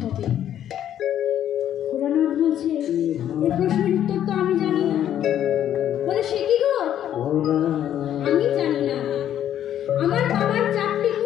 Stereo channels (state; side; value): quieter; right; 10.7 dB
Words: ভোলানাথ বলছে এই প্রশ্নের উত্তর তো আমি জানি না। বলে সে কি গো? আমি জানি না, আমার বাবার চারটি